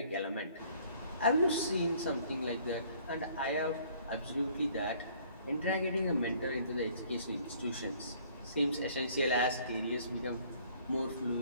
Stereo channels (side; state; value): both; inverted; correlation -0.58